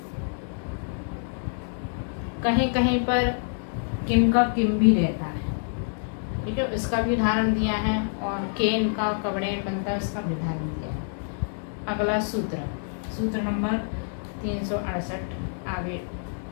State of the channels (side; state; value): right; silent; digital silence